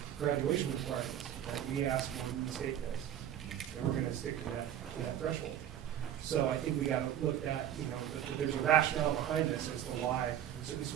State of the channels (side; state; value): left; quieter; 10.8 dB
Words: graduation requirements that we ask when the state does. And we're going to stick to that threshold. So I think we got to look at, that there's a rationale behind this as to why certain